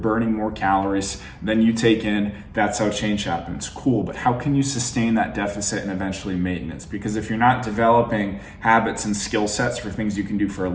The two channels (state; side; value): identical; both; correlation 1.00